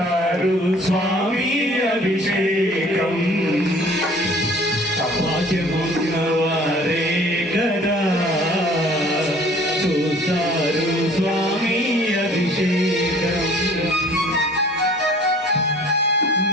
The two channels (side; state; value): both; normal; correlation 0.52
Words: స్వామి అభిషేకం భాగ్యమున్నవారే కదా చూస్తారు స్వామి అభిషేకం